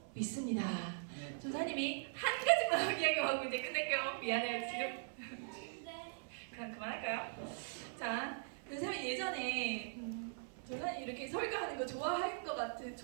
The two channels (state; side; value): silent; left; 51 dB below the other